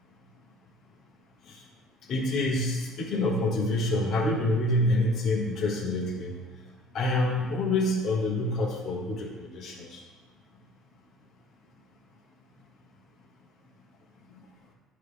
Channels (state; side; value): normal; both; correlation 0.49